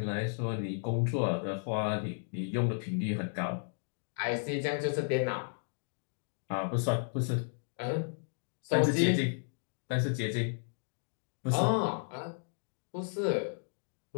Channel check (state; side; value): silent; right; digital silence